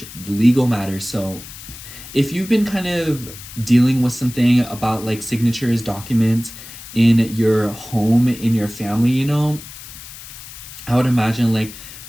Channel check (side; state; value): left; noise; hiss, 15 dB below the sound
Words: legal matters. So if you've been kind of dealing with something about like signatures, documents in your home, in your family, you know, I would imagine like